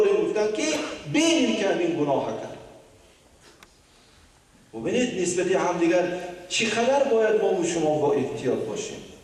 گفتن که بینیم که همین گناه کرد. ببینید نسبت همدیگر چقدر باید ما و شما با احتیاط باشیم.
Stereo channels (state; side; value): identical; both; correlation 1.00